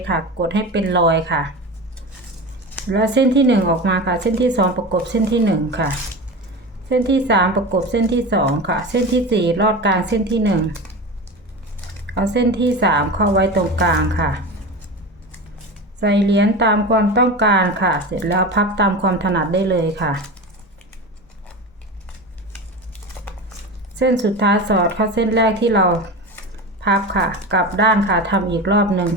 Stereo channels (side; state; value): both; normal; correlation 0.27